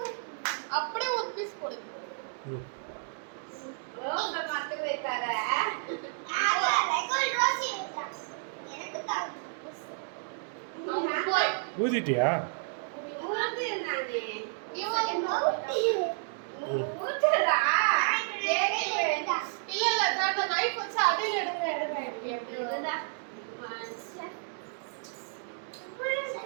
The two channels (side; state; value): left; silent; digital silence